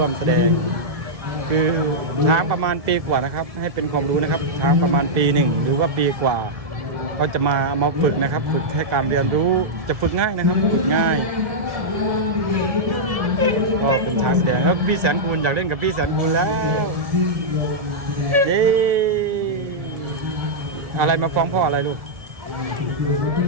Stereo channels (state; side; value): late; left; 1.7 ms